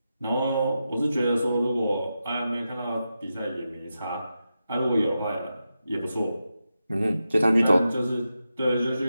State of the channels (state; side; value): inverted; both; correlation -0.89